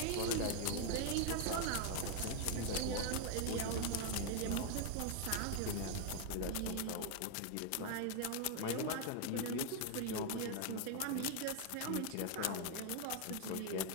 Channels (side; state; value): both; different; correlation 0.00